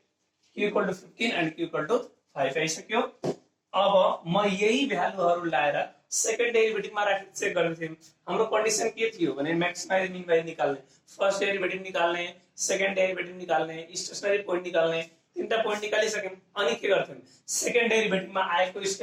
q equal to 15 and q equal to 5 आइसक्यो। अब म यही भ्यालुहरु लाएर सेकेन्ड डेरिभेटिभमा राखेर चेक गर्ने थियौं। हाम्रो कन्डिसन के थियो भने मैक्सिमाइज मिनिमाइज निकाल्ने, फर्स्ट डेरिभेटिभ निकाल्ने, सेकेन्ड डेरिभेटिभ निकाल्ने, स्टेशनरी पोइन्ट निकाल्ने, तीनटा पोइन्ट निकालिसक्यौं। अनि के गर्थ्यौं, सेकेन्ड डेरिभेटिभमा आएको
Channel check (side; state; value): both; identical; correlation 1.00